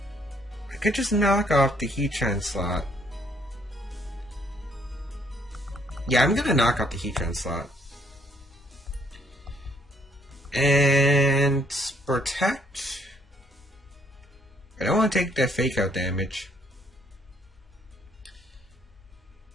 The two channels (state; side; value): normal; both; correlation 0.66